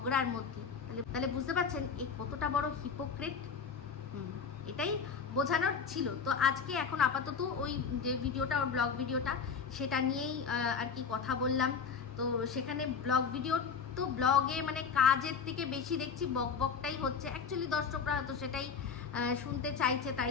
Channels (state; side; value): quieter; right; 6.0 dB